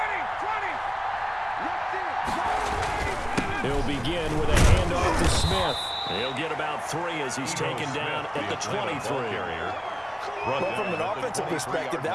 He'll begin with a handoff to Smith. He'll get about 3 as he's taken down at the 23. Well, from an offensive perspective,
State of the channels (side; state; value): both; identical; correlation 1.00